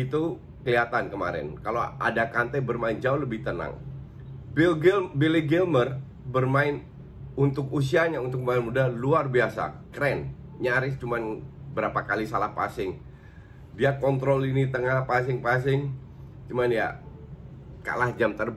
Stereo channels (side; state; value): both; identical; correlation 1.00